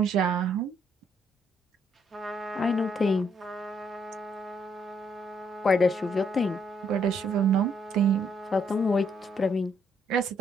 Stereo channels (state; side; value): normal; both; correlation 0.71